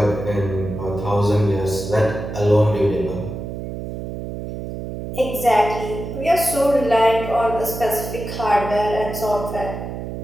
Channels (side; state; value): right; noise; hum, 7 dB below the sound